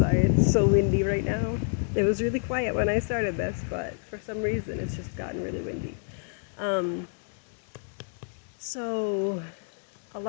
it's so windy right now. It was really quiet when I started this, but for some reason it's just gotten really windy. So a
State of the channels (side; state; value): right; silent; digital silence